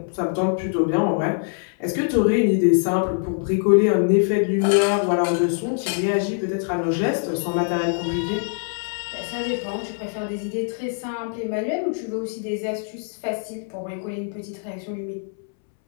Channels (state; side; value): silent; right; 63 dB below the other